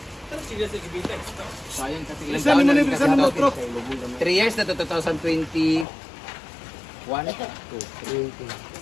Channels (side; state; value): right; drops out; at 5.9 s